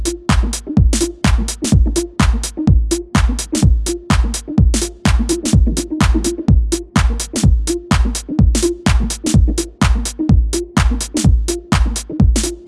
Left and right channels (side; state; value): both; identical; correlation 1.00